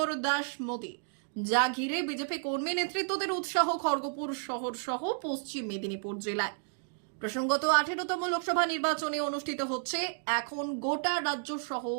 দাস মোদী, যা ঘিরে বিজেপি কর্মী নেতৃত্বদের উৎসাহ খড়গপুর শহর সহ পশ্চিম মেদিনীপুর জেলায়। প্রসঙ্গত 18তম লোকসভা নির্বাচনে অনুষ্ঠিত হচ্ছে এখন গোটা রাজ্য সহ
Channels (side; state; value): left; silent; digital silence